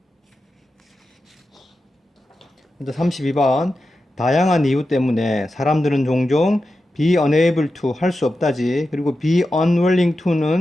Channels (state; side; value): normal; both; correlation 0.91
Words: 먼저 32번 다양한 이유 때문에 사람들은 종종 be unable to 할 수 없다지. 그리고 be unwilling